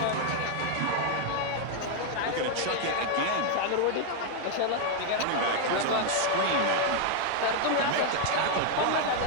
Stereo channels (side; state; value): both; different; correlation 0.00